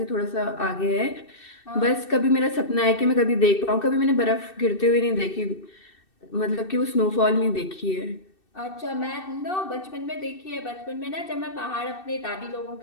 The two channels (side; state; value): right; late; 2.6 ms